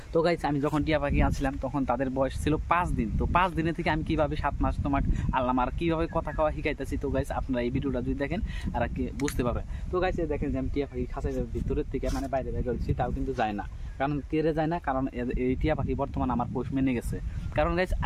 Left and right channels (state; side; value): identical; both; correlation 1.00